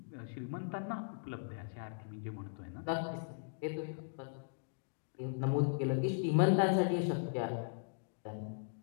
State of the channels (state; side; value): silent; right; digital silence